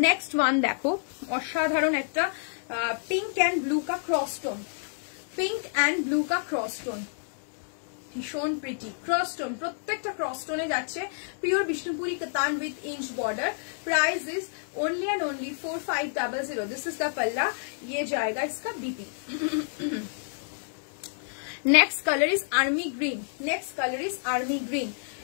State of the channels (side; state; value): right; silent; 59 dB below the other